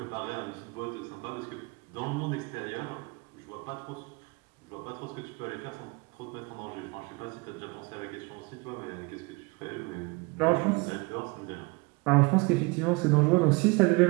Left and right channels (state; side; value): quieter; left; 26.9 dB